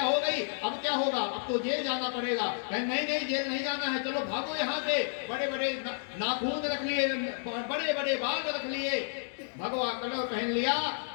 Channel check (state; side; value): silent; right; digital silence